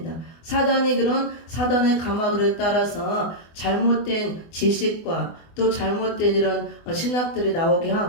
사단이 그런 사단의 감화를 따라서 잘못된 지식과 또 잘못된 이런 신학들이 나오게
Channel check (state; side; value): late; right; 24 ms